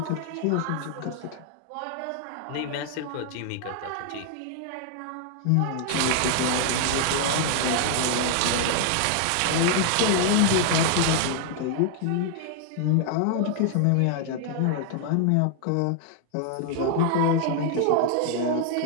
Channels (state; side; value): different; both; correlation 0.00